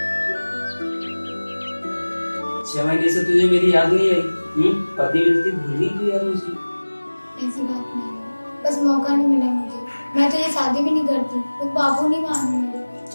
छह महीने से तुझे मेरी याद नहीं आई? पति मिलती भूल ही गई यार मुझे। ऐसी बात नहीं है, बस मौका नहीं मिला मुझे। मैं तो ये शादी भी नहीं करती, तो बाबू नहीं मान मेरे।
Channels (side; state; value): both; inverted; correlation -1.00